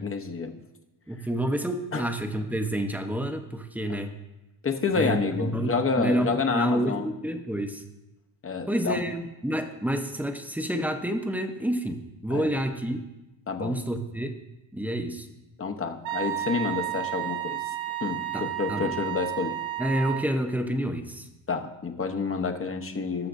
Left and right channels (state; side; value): normal; both; correlation 0.48